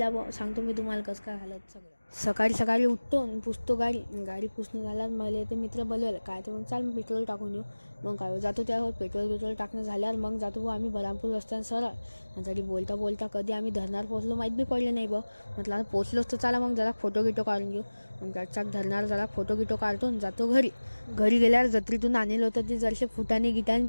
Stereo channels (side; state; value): both; inverted; correlation -1.00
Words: बो. सांगतो मी तुम्हाला कसं काय हालत सगळं. सकाळी सकाळी उठतो आणि पुसतो गाडी. गाडी पुसणं झाल्यावर मला ते मित्र बोलवलं काय तर मग चाल पेट्रोल टाकून येऊ. मग काय जातो त्यावर पेट्रोल टाकणं झाल्यावर मग जातो बो आम्ही बरामपूर रस्त्यानं सरळ. आणि तरी बोलता बोलता कधी आम्ही धरणार पोहोचलो माहीत बी पडले नाही बा. म्हटलं आता पोचलोच तर चला मग जरा फोटो गिटो काढून घेऊ. मग चाक धरणार जरा फोटो गिटो काढतो आणि जातो घरी. घरी गेल्यावर जत्रेतून आणलं होतं ते जरसे फुटाने गिटाने